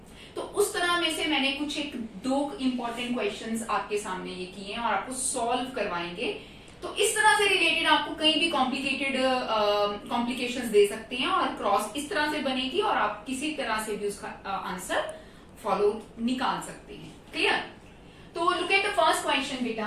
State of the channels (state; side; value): identical; both; correlation 1.00